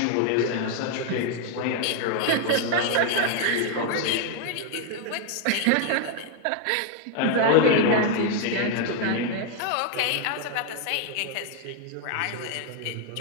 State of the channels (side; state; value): both; different; correlation 0.00